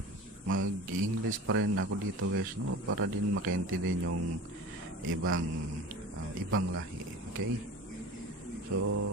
mag-English pa rin ako dito guys, no? Para din makaintindihan yung ibang lahi, okay?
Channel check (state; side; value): normal; both; correlation 0.36